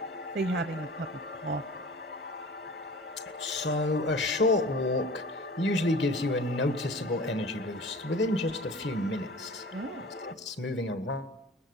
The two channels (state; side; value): normal; both; correlation 0.41